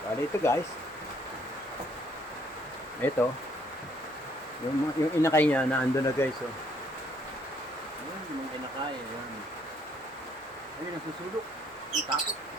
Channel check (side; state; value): right; noise; hum, 29 dB below the sound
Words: Bali ito guys. Ito, yung inakay niya, naando na guys, oh. Ayan, yung inakay, ayan. Ayun, nasusulok. Ang takot,